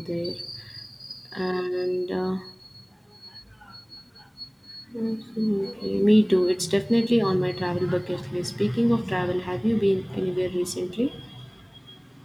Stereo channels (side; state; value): both; identical; correlation 1.00